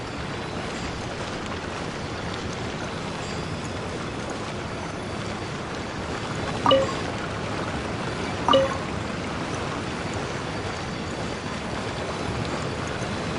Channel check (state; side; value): identical; both; correlation 1.00